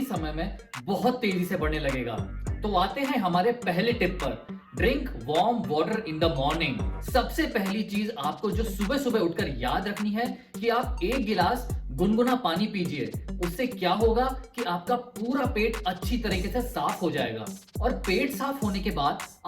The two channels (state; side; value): identical; both; correlation 1.00